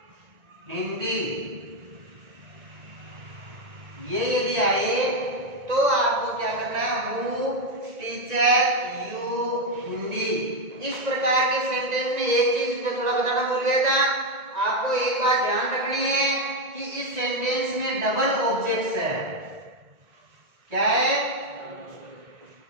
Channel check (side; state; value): left; late; 1.9 ms